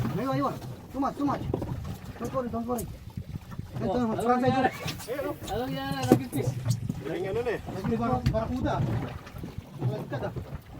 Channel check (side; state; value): both; identical; correlation 1.00